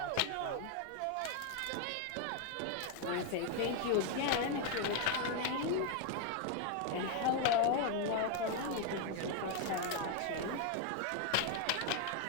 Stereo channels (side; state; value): both; different; correlation 0.01